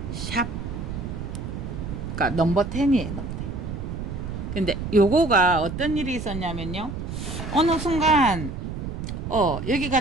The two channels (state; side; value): noise; right; rumble, 6 dB below the sound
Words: 샵, 그러니까 넘버 10이에요. 넘버 10. 근데 요거가 어떤 일이 있었냐면요, 어느 순간 여기가